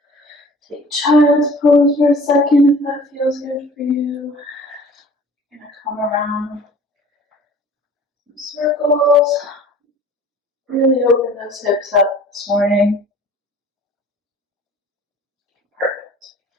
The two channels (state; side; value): normal; both; correlation 0.47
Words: take child's pose for a second if that feels good for you. You're gonna come around some circles. Really open those hips up this morning. Perfect.